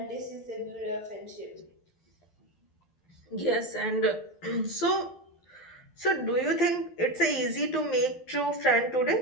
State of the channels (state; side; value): late; right; 12 ms